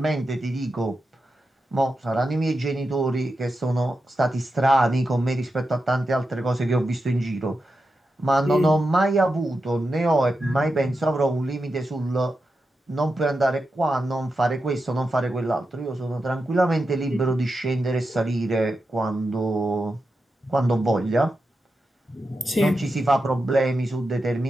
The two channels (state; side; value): normal; both; correlation 0.89